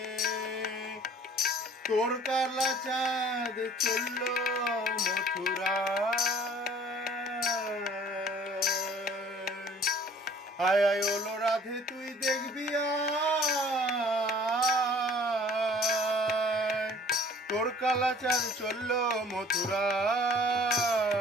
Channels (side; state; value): both; normal; correlation 0.52